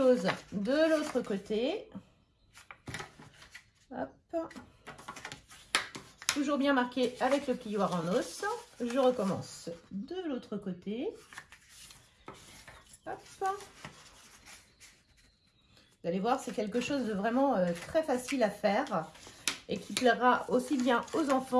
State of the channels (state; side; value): identical; both; correlation 1.00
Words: de l'autre côté. Hop. Toujours bien marqué avec le plioir en os. Je recommence de l'autre côté. Hop. Vous allez voir, c'est quelque chose de vraiment très facile à faire et qui plaira aussi bien aux